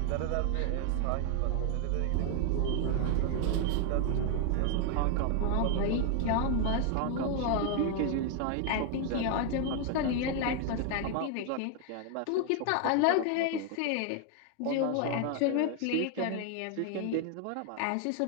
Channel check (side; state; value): both; different; correlation 0.00